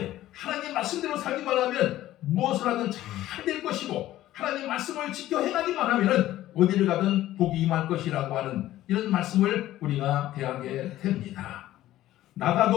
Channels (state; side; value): quieter; right; 14.4 dB